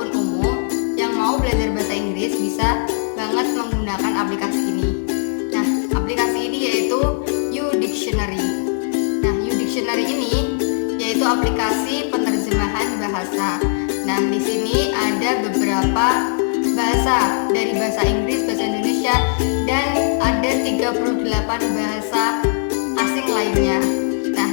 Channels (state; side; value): silent; right; digital silence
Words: umum yang mau belajar bahasa Inggris bisa banget menggunakan aplikasi ini. Nah, aplikasi ini yaitu YouDictionary. Nah, YouDictionary ini yaitu aplikasi penerjemahan bahasa. Nah, di sini ada beberapa bahasa dari bahasa Inggris, bahasa Indonesia, dan ada 38 bahasa asing lainnya. Nah,